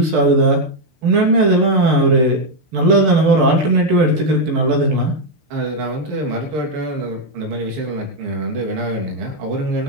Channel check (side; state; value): left; late; 6.6 ms